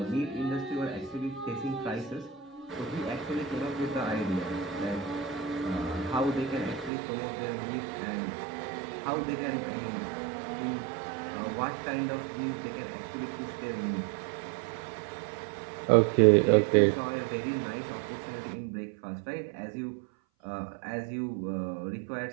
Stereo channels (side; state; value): left; drops out; at 6.9 s